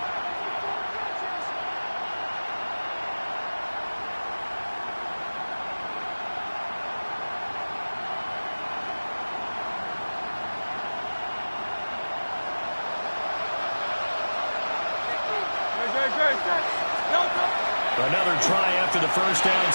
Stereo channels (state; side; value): inverted; both; correlation -1.00